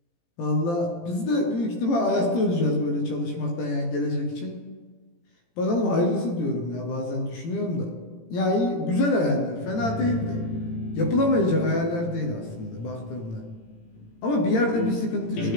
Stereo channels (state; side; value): late; right; 18 ms